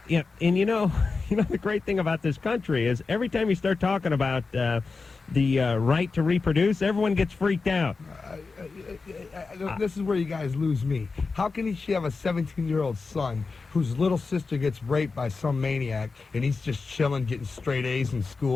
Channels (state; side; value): quieter; right; 4.3 dB